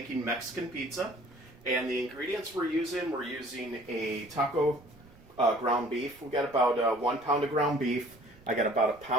Mexican pizza, and the ingredients we're using a taco ground beef. We got about 1 pound of ground beef. I got about 1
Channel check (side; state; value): right; noise; rumble, 25 dB below the sound